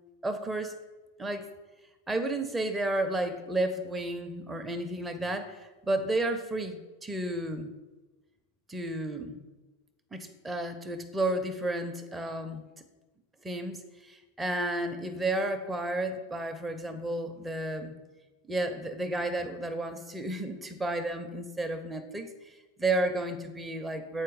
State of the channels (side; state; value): both; normal; correlation 0.64